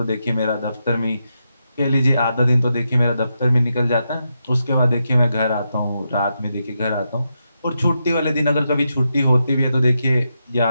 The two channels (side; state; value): both; inverted; correlation -0.85